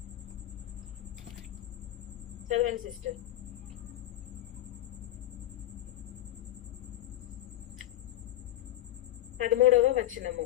చదవండి సిస్టర్. పదమూడవ వచనము,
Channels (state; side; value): quieter; right; 14.2 dB